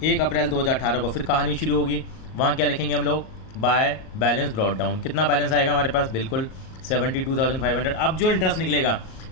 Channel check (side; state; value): right; late; 38 ms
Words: 1 अप्रैल 2018 को फिर कहानी शुरू होगी। वहाँ क्या लिखेंगे हम लोग, बाय बैलेंस ब्रॉड डाउन। कितना बैलेंस आएगा हमारे पास, बिल्कुल 72,500। अब जो इंटरेस्ट निकलेगा,